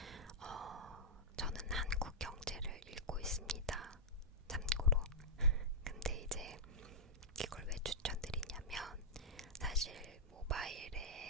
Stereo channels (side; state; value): both; normal; correlation -0.10